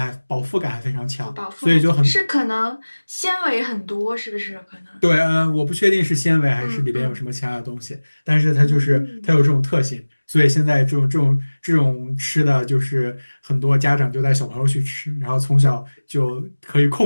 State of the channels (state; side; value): inverted; both; correlation -1.00